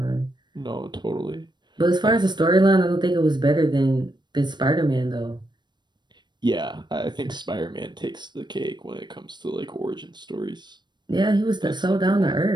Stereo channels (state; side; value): late; left; 0.22 ms